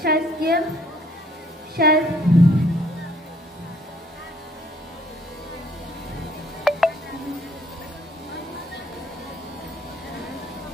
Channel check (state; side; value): normal; both; correlation 0.62